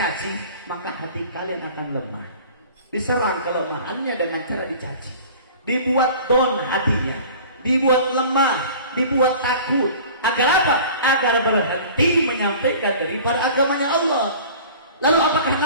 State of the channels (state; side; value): inverted; both; correlation -0.43